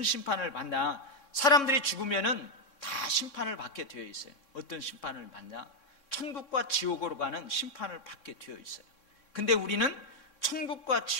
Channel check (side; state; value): right; late; 3.6 ms